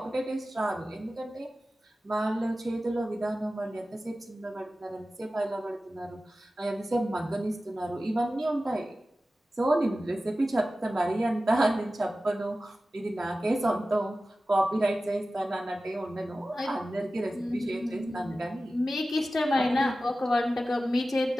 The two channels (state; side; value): normal; both; correlation 0.95